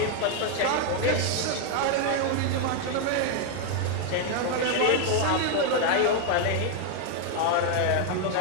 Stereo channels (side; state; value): both; different; correlation 0.00